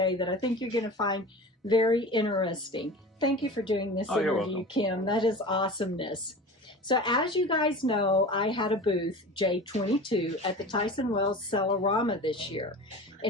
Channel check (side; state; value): both; normal; correlation 0.35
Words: that I think you're going to find very interesting. Thank you for doing this interview, Kim. That is awesomeness. So as you guys know, I had a booth, J22, at the Tyson Wells Cellarama this year.